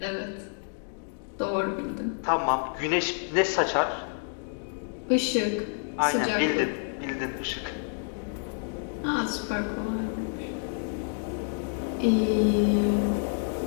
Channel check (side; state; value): right; silent; digital silence